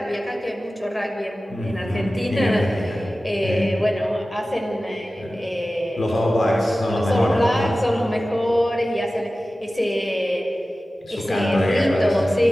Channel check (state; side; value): normal; both; correlation 0.96